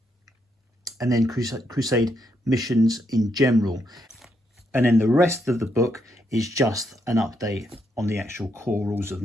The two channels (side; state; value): both; normal; correlation 0.78